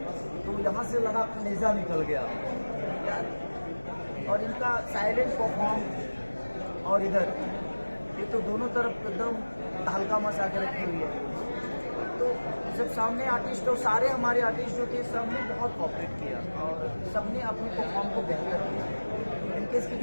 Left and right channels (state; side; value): inverted; both; correlation -1.00